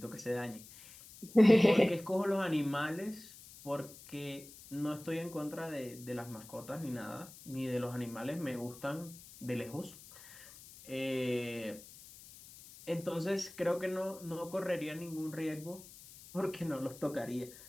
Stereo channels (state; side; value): noise; left; hiss, 18 dB below the sound